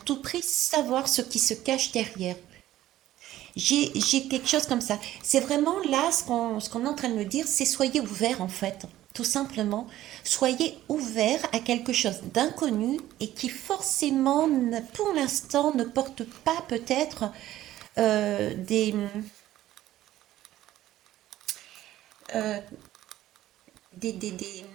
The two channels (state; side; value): quieter; left; 14.1 dB